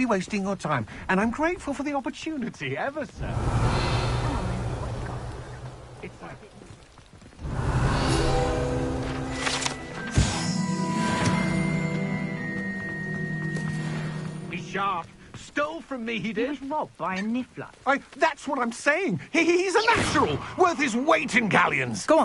wasting your time, and I'm grateful for the opportunity, ever so. It's like... He's sharp. Stole from me, he did. He was robbed by a niffler. That's what I'm saying. He's a natural, worth his weight in galleons. Go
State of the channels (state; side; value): identical; both; correlation 1.00